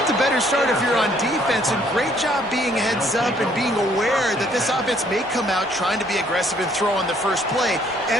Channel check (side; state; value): both; normal; correlation 0.64